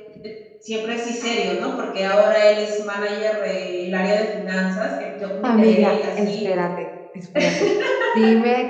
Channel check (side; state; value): both; identical; correlation 1.00